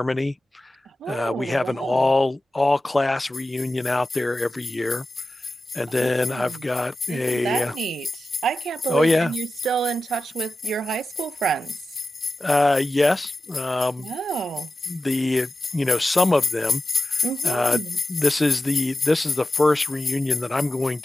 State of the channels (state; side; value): normal; both; correlation 0.93